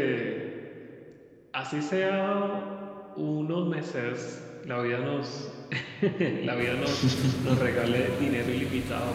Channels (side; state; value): both; identical; correlation 1.00